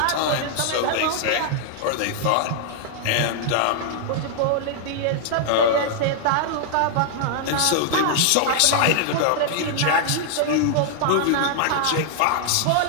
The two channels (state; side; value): different; both; correlation -0.01